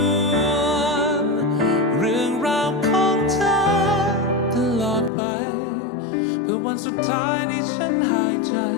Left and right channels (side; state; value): right; drops out; at 5.1 s